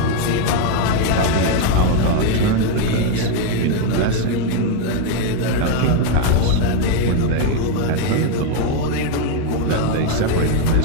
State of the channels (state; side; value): different; both; correlation 0.01